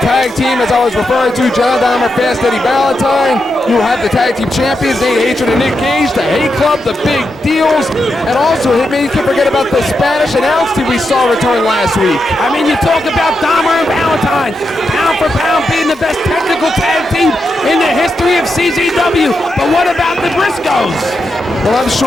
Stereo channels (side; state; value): both; normal; correlation 0.86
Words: tag team, as I was referring to, John Dahmer, Fast Eddie Valentine. You have the tag team champions, Nate Hatred and Nick Gage, the Hate Club, the Big Deals, and also, Hitman, you can't forget about the Spanish announce team we saw return last week. I mean, you talk about Dahmer and Valentine, pound for pound being the best technical tag team in the history of CZW. But what about the Briscoes? Well, I'm